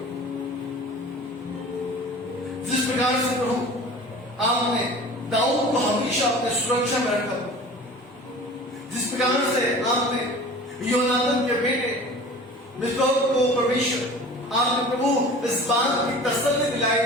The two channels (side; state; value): both; normal; correlation 0.41